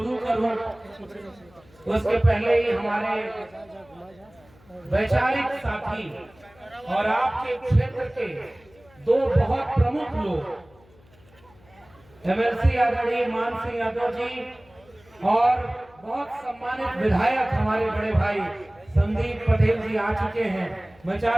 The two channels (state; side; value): noise; left; hum, 28 dB below the sound